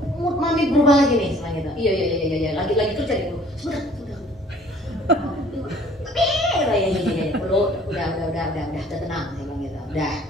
Mood mami berubah lagi nih, setelah gitu. Iya. Lagi kerja dulu. Sebentar. Ya, udah tenang, saya bilang gitu. Udah,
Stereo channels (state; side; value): normal; both; correlation 0.54